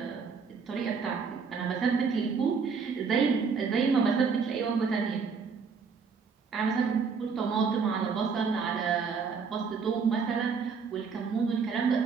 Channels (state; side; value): quieter; left; 5.5 dB